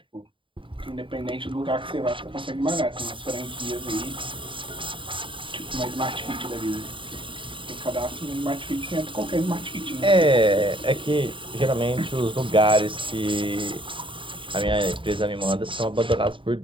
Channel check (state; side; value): late; left; 0.25 ms